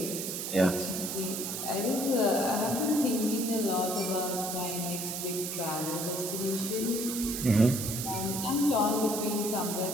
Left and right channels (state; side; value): noise; right; hiss, 4 dB below the sound